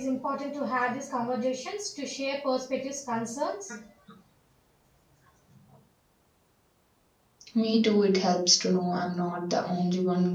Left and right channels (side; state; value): both; identical; correlation 1.00